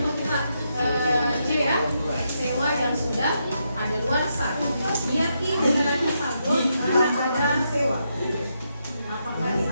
kita C ya, sewa yang sudah ada luarsa. Biar generasi saldo karena ada sewa.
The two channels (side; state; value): both; inverted; correlation -0.81